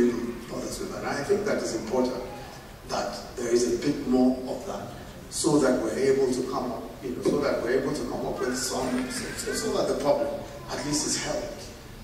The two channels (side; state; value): both; identical; correlation 1.00